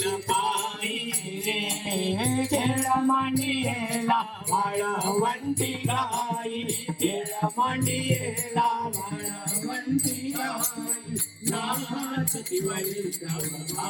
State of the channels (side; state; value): both; identical; correlation 1.00